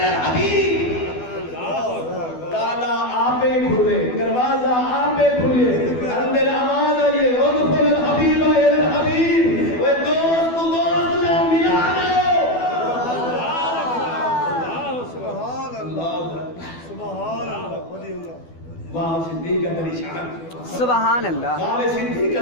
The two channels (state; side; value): late; right; 12 ms